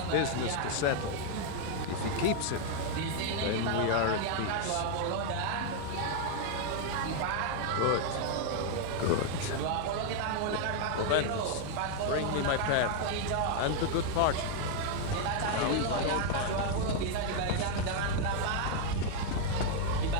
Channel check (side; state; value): both; different; correlation 0.00